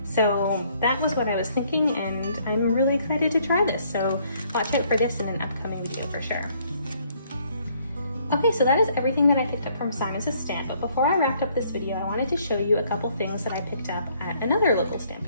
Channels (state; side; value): inverted; both; correlation -0.65